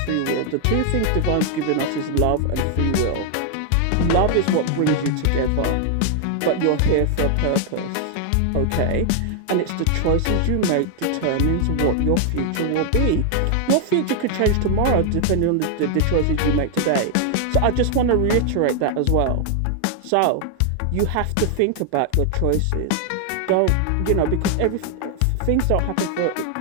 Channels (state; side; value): different; both; correlation 0.00